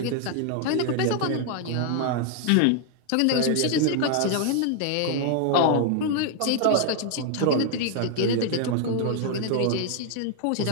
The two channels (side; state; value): both; different; correlation 0.00